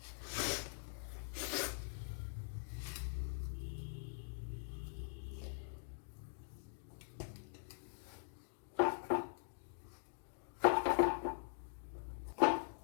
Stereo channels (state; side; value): silent; right; digital silence